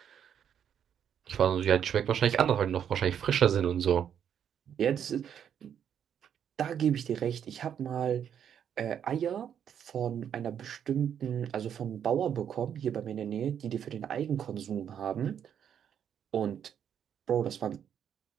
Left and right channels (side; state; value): left; quieter; 8.8 dB